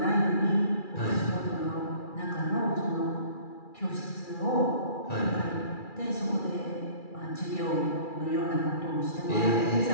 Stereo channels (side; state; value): right; late; 2.4 ms